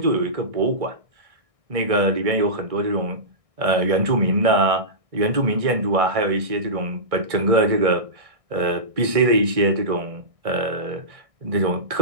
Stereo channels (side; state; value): left; late; 1.6 ms